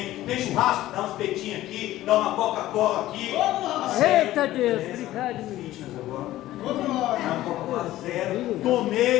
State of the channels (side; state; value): right; quieter; 15.1 dB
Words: Tem churrasco, dá uns peitinhos aqui, dá uma Coca-Cola aqui. Eita, Deus! Obrigado, meu. Fitness agora. Uma Coca-Cola zero.